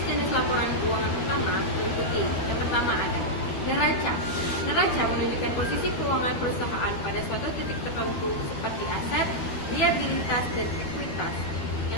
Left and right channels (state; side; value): late; right; 12 ms